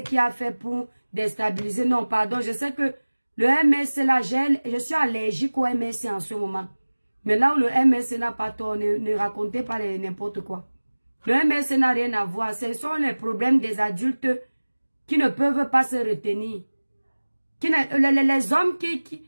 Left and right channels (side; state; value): both; inverted; correlation -1.00